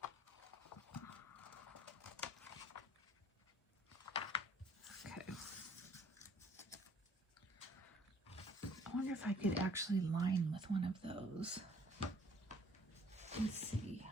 Okay. I wonder if I could actually line with one of those. Let's see.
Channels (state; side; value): normal; both; correlation 0.59